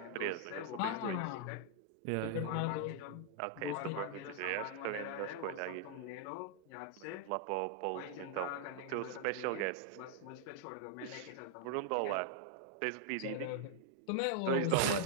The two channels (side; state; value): both; different; correlation -0.01